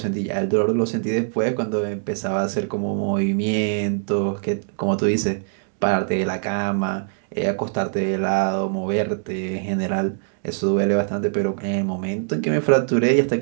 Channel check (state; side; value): silent; left; digital silence